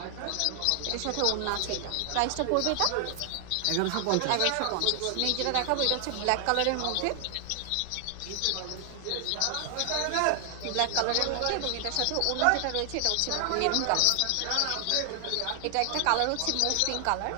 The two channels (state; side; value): different; both; correlation 0.00